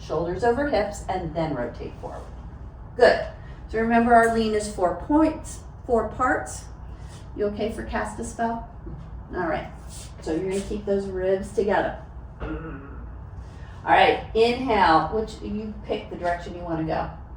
shoulders over hips, and then rotate forward. Good. So remember, our lean is 4 points, 4 parts. You okay for cast a spell? All right. So you're gonna keep those ribs together. All right, inhale, which you pick the direction you wanna go.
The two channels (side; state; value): both; identical; correlation 1.00